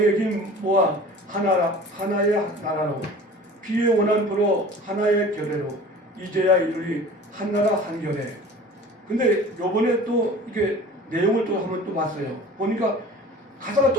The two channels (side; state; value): both; normal; correlation 0.43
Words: 힘 모아 하나의 나라로 피의 원한부로 하나의 결례로 이제야 이르리 한나라 한결에. 근데 요번에 또 이게 내용을 또 한번 또 봤어요. 보니까 가사가